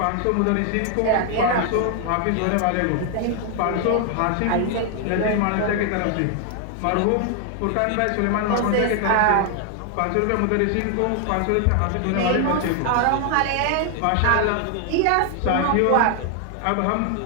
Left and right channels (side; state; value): both; different; correlation 0.00